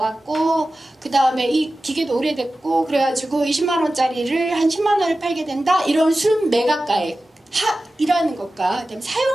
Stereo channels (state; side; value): normal; both; correlation 0.95